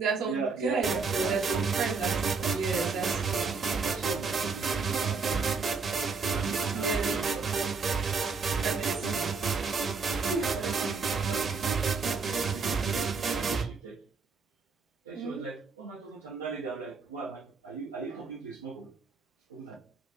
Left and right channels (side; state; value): left; quieter; 4.8 dB